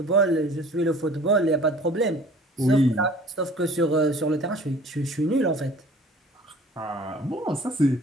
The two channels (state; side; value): normal; both; correlation 0.48